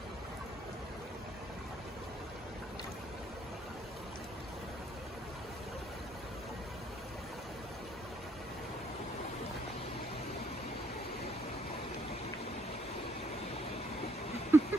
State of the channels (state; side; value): normal; both; correlation 0.69